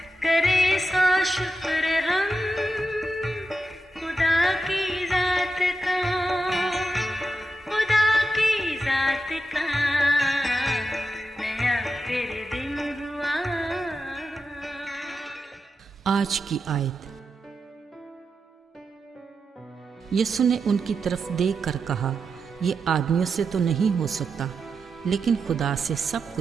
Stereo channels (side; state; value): both; normal; correlation 0.87